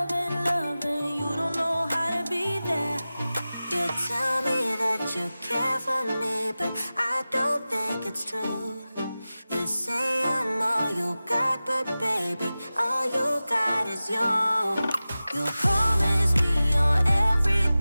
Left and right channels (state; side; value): inverted; both; correlation -0.96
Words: loving. You don't know how to be there. You tell me that you care for me, but I don't think it's true. You say I'm all you got, but baby, all you got is you. You promise me you're